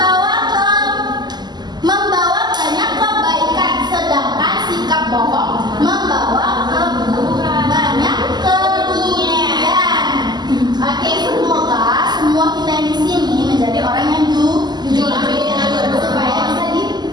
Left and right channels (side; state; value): left; late; 0.21 ms